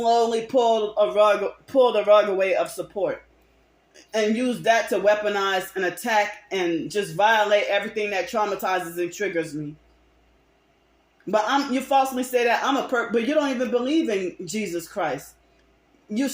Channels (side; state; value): both; identical; correlation 1.00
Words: pull the rug away of support. And use that to weaponize and attack and just violate everything that traumatizes and triggers me. But you falsely say that I'm a perp, but you don't even believe in Jesus Christ. You